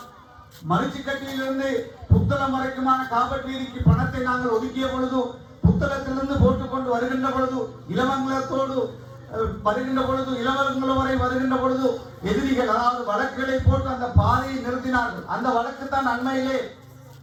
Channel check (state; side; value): identical; both; correlation 1.00